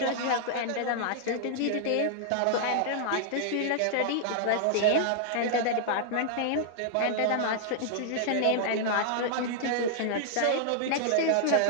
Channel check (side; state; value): both; different; correlation -0.01